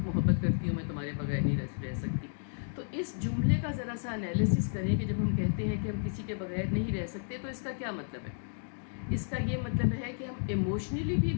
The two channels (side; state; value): right; silent; digital silence